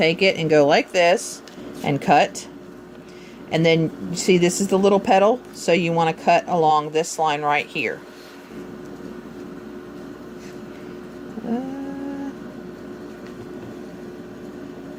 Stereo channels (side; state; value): both; identical; correlation 1.00